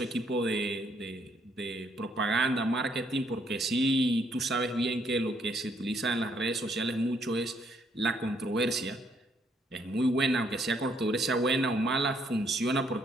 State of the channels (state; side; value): normal; both; correlation 0.69